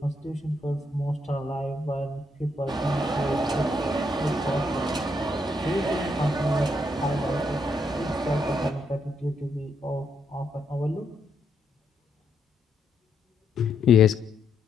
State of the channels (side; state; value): both; normal; correlation 0.77